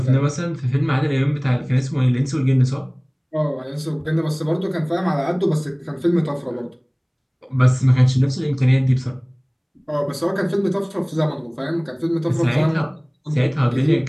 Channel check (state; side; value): identical; both; correlation 1.00